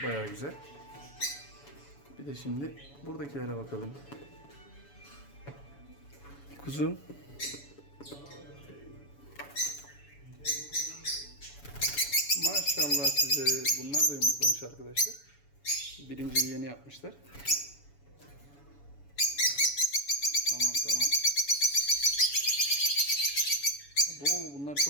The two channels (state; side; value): late; right; 7.0 ms